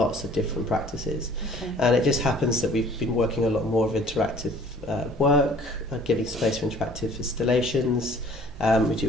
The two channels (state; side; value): normal; both; correlation 0.52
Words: of different practices. Okay. And it just happens that we've been working a lot more of interactive work, giving space for interactive installations. We do